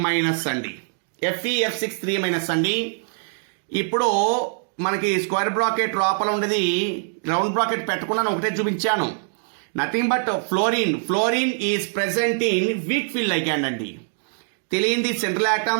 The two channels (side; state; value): left; silent; digital silence